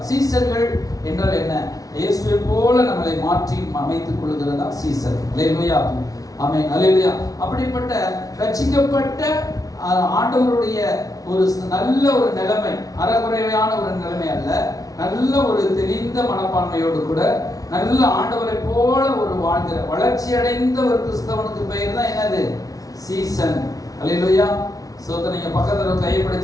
சீசர்கள் என்றால் என்ன? இயேசுவை போல நம்மளை மாற்றி அமைத்துக் கொள்கிறதா சீசர். அல்லேலூயா. ஆமென். அல்லேலூயா. அப்படிப்பட்ட ரட்சிக்கப்பட்ட ஆண்டவருடைய ஒரு நல்ல ஒரு நிலைமை, அறகுறையான ஒரு நிலைமை அல்ல, நல்ல ஒரு தெளிந்த மனப்பான்மையோடு கூட நல்ல ஆண்டவரை போல ஒரு வாழ்கிற வளர்ச்சி அடைந்த ஒரு கிறிஸ்தவனுக்கு பெயர் தான் என்னது? சீசன். அல்லேலூயா. சோதனை நீங்க பக்கத்துல கையை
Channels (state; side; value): late; right; 0.18 ms